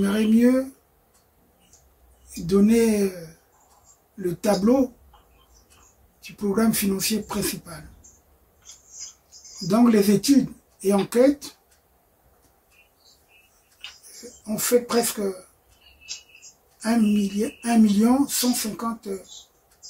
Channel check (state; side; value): identical; both; correlation 1.00